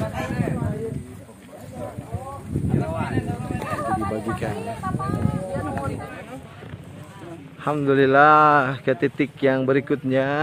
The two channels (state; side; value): identical; both; correlation 1.00